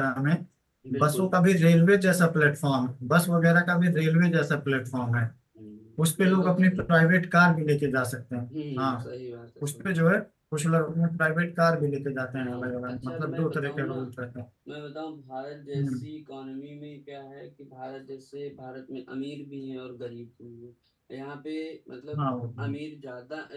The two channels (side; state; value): both; identical; correlation 1.00